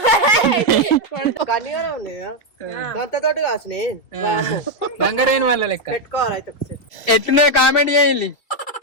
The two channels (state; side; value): late; right; 2.6 ms